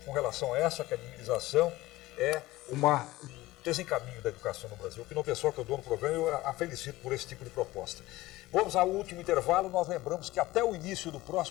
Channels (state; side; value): quieter; right; 18.2 dB